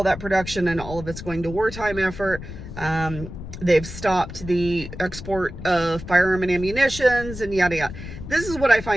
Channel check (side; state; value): left; noise; rumble, 11 dB below the sound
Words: that production, and all of it's going to wartime effort. They've stopped the export of firearm and ammunitions and yada yada. This is what I